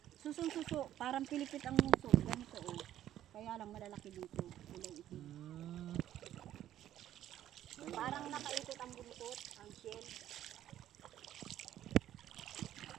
Susong suso. Parang pilipit ang muso. Ganito oh. Kaya lang malalaki dito. Kulay itim. Parang nakaikot ang buntot, ang shell.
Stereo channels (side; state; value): left; quieter; 12.1 dB